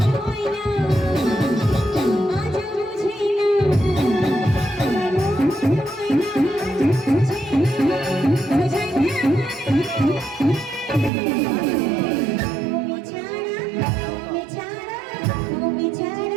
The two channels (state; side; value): drops out; left; at 11.1 s